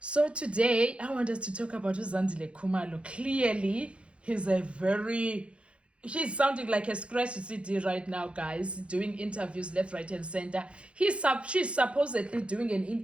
today, I want us to talk about Zandile Khumalo. Clearly, he's sounding like a scratch CD right now, guys, doing interviews left, right, and center. She's supposedly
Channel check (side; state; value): left; late; 0.059 ms